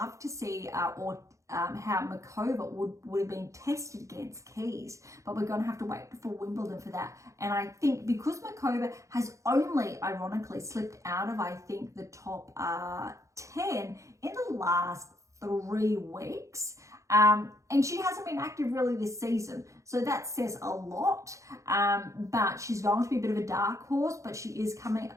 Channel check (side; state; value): left; late; 0.15 ms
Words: to see how Makova would have been tested against Keys. But we're going to have to wait for Wimbledon for that. And I think because Makova has only, ironically, slipped out of, I think, the top 10 in the last 3 weeks, and she hasn't been active really this season, so that says a lot. But she's going to be a bit of a dark horse, but she is coming